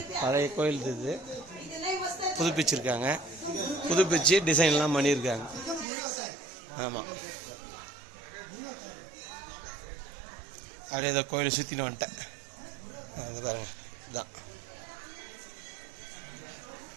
பழைய கோயில் இது புதுப்பிச்சிருக்காங்க, புதுப்பிச்சு டிசைன்லாம் பண்ணியிருக்காங்க. ஆமாம், அப்படியே இதை கோயிலை சுற்றின்னு வந்துட்டேன். அது பாருங்கள், இதுதான்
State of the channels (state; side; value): drops out; left; at 5.9 s